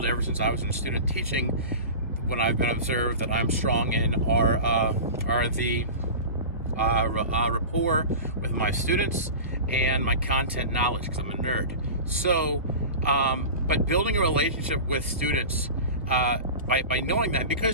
ever since I was in student teaching, when I've been observed that I'm strong in, are the rapport with my students and my content knowledge, because I'm a nerd. So, but building a relationship with students by knowing that,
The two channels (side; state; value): both; inverted; correlation -0.32